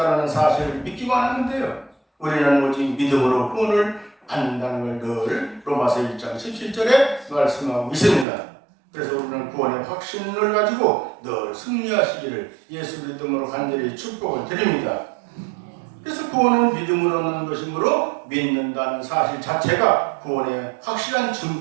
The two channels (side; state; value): left; drops out; at 8.2 s